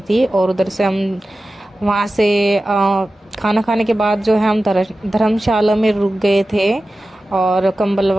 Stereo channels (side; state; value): both; normal; correlation 0.95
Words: थी। और उधर से हम वहाँ से खाना खाने के बाद जो है हम धर्मशाला में रुक गए थे और कंबल